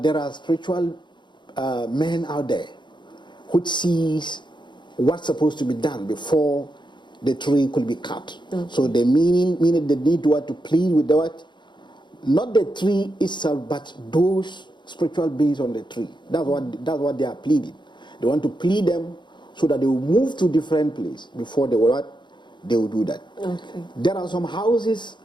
there are spiritual men out there which sees what's supposed to be done before the tree could be cut. So the meaning they need to plead with the what? Not the tree itself, but those spiritual beings on the tree. That's what they are pleading. They want to plead them so that they will move to different place before they will do that. Okay. There are some houses,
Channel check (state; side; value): late; right; 0.22 ms